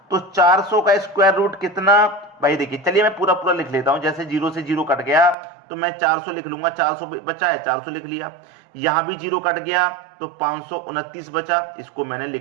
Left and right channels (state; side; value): drops out; left; at 5.4 s